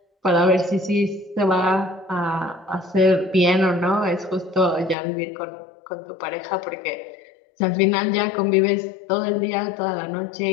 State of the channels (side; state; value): right; drops out; at 5.0 s